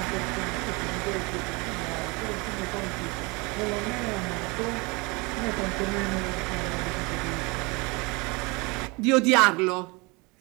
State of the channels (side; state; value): left; quieter; 27.1 dB